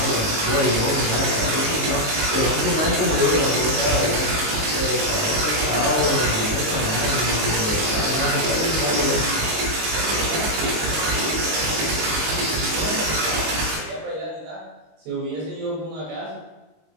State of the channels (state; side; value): late; left; 19 ms